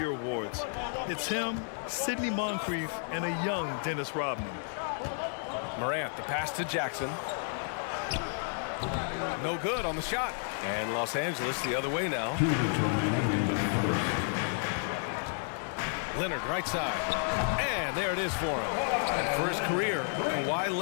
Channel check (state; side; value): silent; right; 57 dB below the other